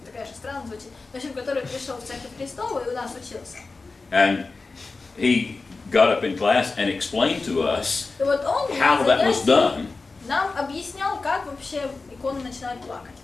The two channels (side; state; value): right; quieter; 3.9 dB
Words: такая же странно звучит, в общем, который пришел в Церковь Христову и у нас учился. And he got up in class and explained to us И вот он how на that was занятии done нам объяснял, как вообще иконы начинают плакать.